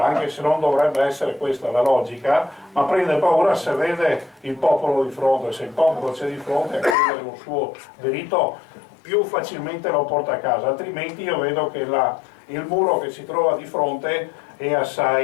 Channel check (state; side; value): drops out; right; at 7.0 s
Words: anche se non dovrebbe essere questa la logica, ma prende paura se vede il popolo di fronte. Se il popolo c'è di fronte a chiedere un suo diritto, più facilmente lo porta a casa, altrimenti io vedo che il muro che si trova di fronte è